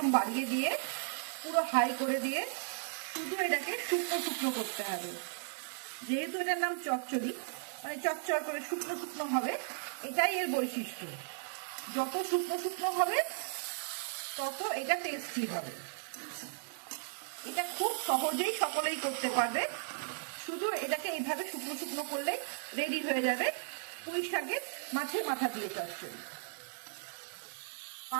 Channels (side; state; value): left; silent; digital silence